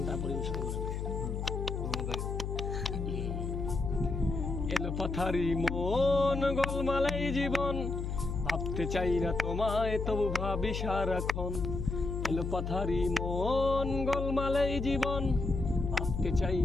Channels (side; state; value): left; noise; hum, 3 dB below the sound